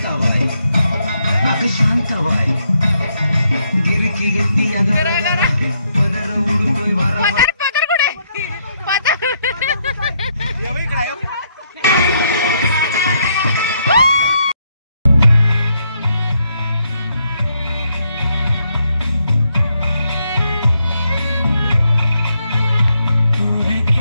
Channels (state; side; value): inverted; both; correlation -0.75